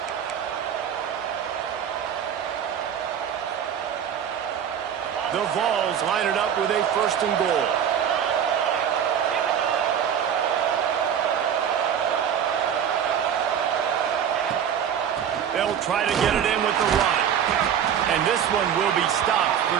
The Vols line it up with a 1st and goal. They'll try to get it in with the run. And this one will be stopped for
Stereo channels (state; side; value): quieter; left; 8.7 dB